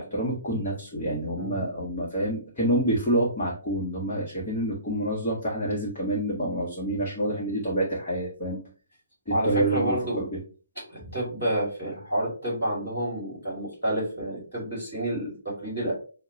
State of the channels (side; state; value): both; inverted; correlation -0.46